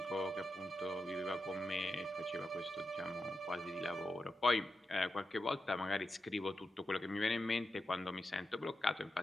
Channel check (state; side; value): normal; both; correlation 0.89